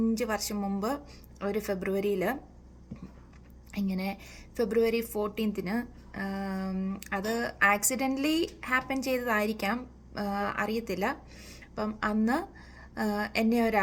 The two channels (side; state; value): both; identical; correlation 1.00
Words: വർഷം മുമ്പ് ഒരു ഫെബ്രുവരിയിൽ, ഇങ്ങനെ ഫെബ്രുവരി 14 അത് ആക്സിഡൻ്റലി ഹാപ്പൻ ചെയ്തതായിരിക്കാം, അറിയത്തില്ല. അപ്പം അന്ന് എന്നെ